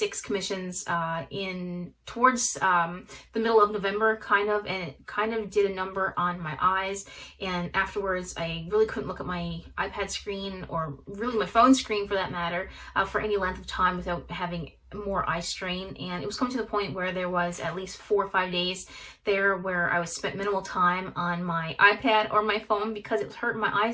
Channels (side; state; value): both; identical; correlation 1.00